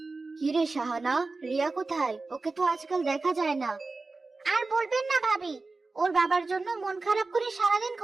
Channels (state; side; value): quieter; left; 3.6 dB